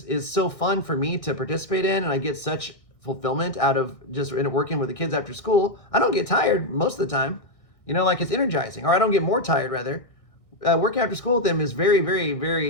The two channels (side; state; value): right; late; 1.6 ms